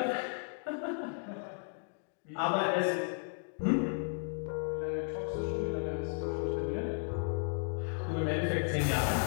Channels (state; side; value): silent; right; 55 dB below the other